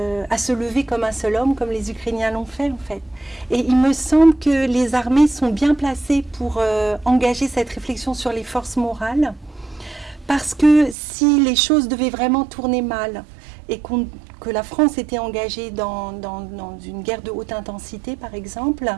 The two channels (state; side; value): drops out; left; at 11.0 s